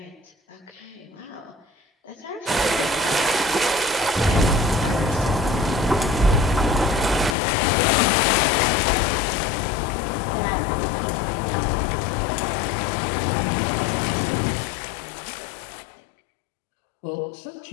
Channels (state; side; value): drops out; right; at 7.4 s